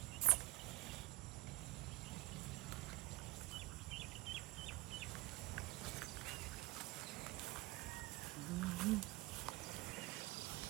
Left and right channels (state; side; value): quieter; left; 20.4 dB